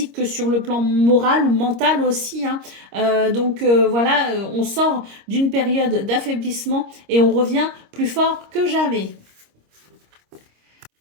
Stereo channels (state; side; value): late; left; 26 ms